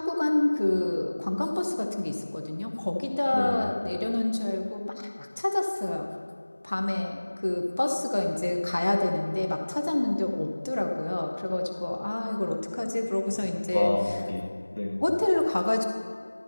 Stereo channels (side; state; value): both; inverted; correlation -1.00